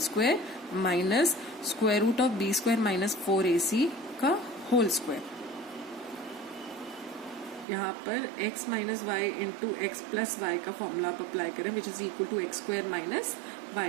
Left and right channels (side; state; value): left; drops out; at 7.7 s